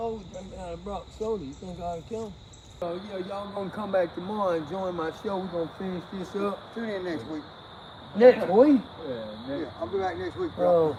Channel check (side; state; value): both; identical; correlation 1.00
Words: drinking out of Brock soda. You think I ought to kill him? Oh yeah, y'all gonna come back tomorrow and join my show. We're gonna finish this up. Tune in next week. Next week? Yeah, I'll be back next week, bro.